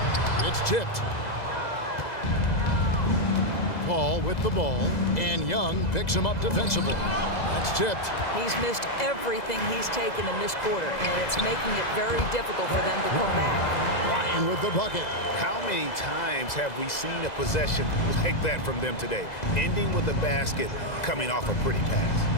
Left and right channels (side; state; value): right; late; 2.0 ms